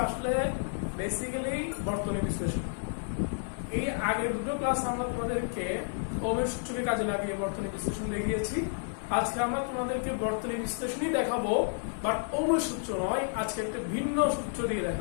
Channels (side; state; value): right; silent; digital silence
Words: আসলে বেসিক্যালি বর্তনী বিশ্লেষণ। এই আগের দুটো ক্লাস আমরা তোমাদেরকে ওমের সূত্রকে কাজে লাগিয়ে বর্তনী বিশ্লেষণ দেখিয়েছি। আজকে আমরা তোমাদেরকে বর্তনী বিশ্লেষণই দেখাবো, বাট ওমের সূত্র নয়, আজকে একটা ভিন্ন সূত্র দিয়ে